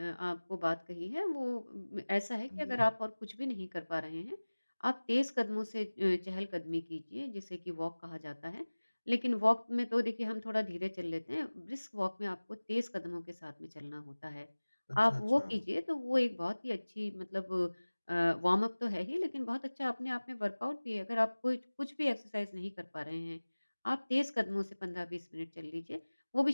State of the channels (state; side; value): inverted; both; correlation -1.00